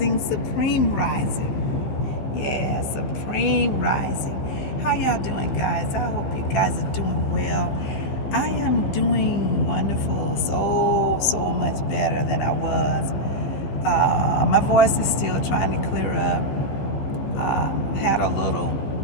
Supreme Rising. Yeah, Supreme Rising. How y'all doing, guys? I hope you guys are doing well. I am doing wonderful, so much better than I was. My voice is still trying to clear up. Had a little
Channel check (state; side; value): late; right; 15 ms